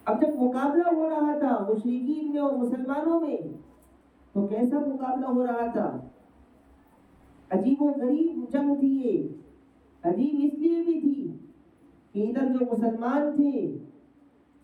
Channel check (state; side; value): identical; both; correlation 1.00